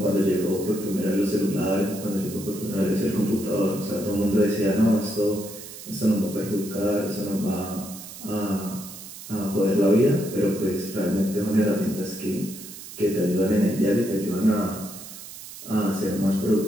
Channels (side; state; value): right; noise; hiss, 14 dB below the sound